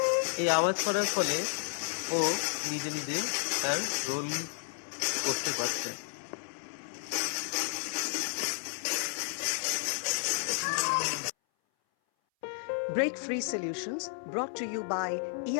এই আওয়াজ করার ফলে ও নিজে নিজে তার রোল করতে পারছে। Break Free Solutions, brought to you by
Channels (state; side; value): silent; right; 56 dB below the other